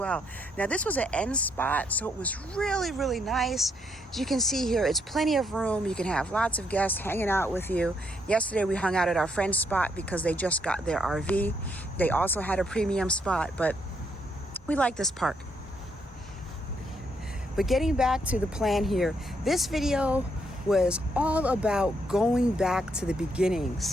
Now, this was an end spot, so it was really nice. As you can see here, it's plenty of room. You can have lots of guests hanging out with you. Yesterday we hung out at our friend's spot because they just got their RV. They also had a premium spot, but we like this park. But getting back to the plan here, this video was all about going back to the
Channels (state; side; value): normal; both; correlation 0.75